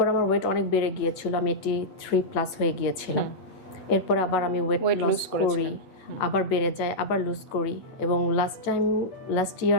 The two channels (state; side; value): late; right; 8.4 ms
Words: আমার ওয়েট অনেক বেড়ে গিয়েছিল, আমি 83+ হয়ে গিয়েছিলাম। এরপর আবার আমি ওয়েট লস করি, আবার বেড়ে যায়, আবার লুজ করি। এবং লাস্ট